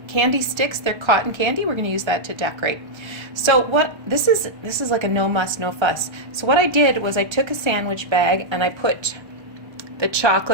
candy sticks. They're cotton candy. We're going to use that to decorate. So what this is like a no muss, no fuss. So what I did was I took a sandwich bag and I put the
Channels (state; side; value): late; left; 1.3 ms